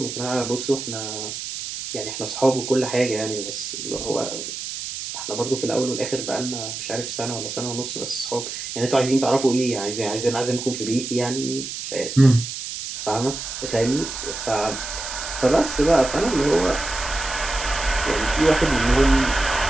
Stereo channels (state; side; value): noise; right; hiss, 7 dB below the sound